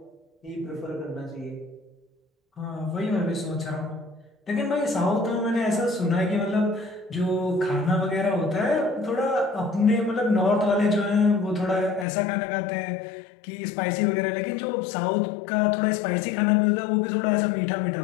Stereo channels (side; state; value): right; drops out; at 12.1 s